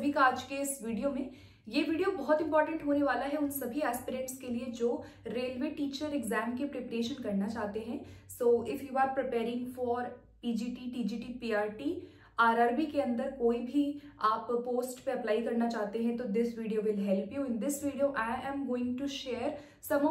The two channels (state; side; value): identical; both; correlation 1.00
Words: का आज के इस वीडियो में। ये वीडियो बहुत इंपॉर्टेंट होने वाला है उन सभी एस्पिरेंट्स के लिए जो रेलवे टीचर एग्जाम की प्रिपरेशन करना चाहते हैं। So if you are preparing for PGT, TGT, PRT, RRB के अंदर कोई भी आप पोस्ट पे अप्लाई करना चाहते हैं तो this video will help you. In this video I am going to share some